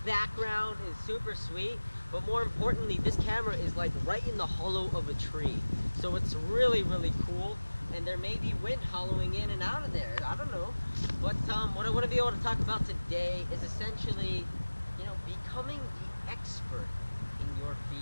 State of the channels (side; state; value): both; inverted; correlation -1.00